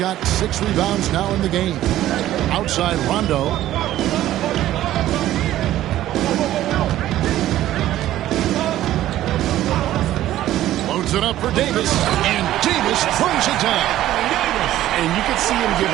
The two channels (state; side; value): quieter; left; 13.7 dB